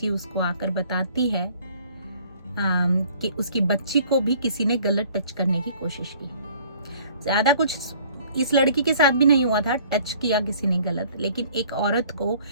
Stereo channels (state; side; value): inverted; both; correlation -0.55